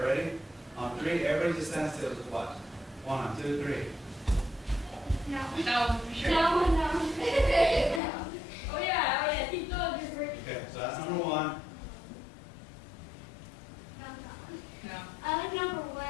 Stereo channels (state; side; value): drops out; right; at 8.0 s